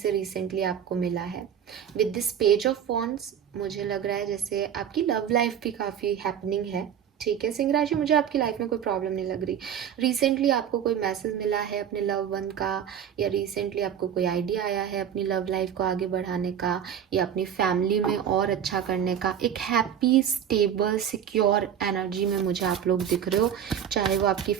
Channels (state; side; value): quieter; left; 9.0 dB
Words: रिसेंटली आपको मिला है। With this page of wands मुझे लग रहा है जैसे आपकी लव लाइफ भी काफ़ी हैपनिंग है। ठीक है सिंह राशि, मुझे आपकी लाइफ में कोई प्रॉब्लम नहीं लग रही। रिसेंटली आपको कोई मैसेज मिला है अपने लव वन का, या रिसेंटली आपको कोई आइडिया आया है अपनी लव लाइफ को आगे बढ़ाने का, या अपनी फैमिली में और अच्छा करने का। एक हैप्पी स्टेबल सिक्योर एनर्जी में मुझे आप लोग दिख रहे हो, चाहे वो आपकी